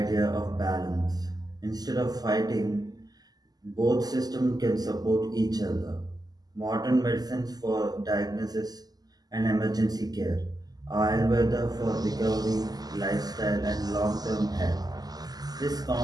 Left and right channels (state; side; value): late; left; 0.19 ms